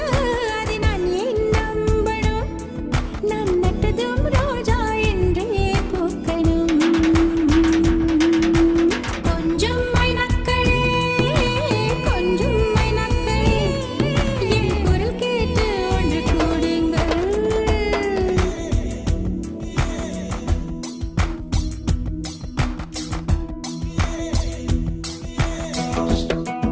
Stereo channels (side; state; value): both; identical; correlation 1.00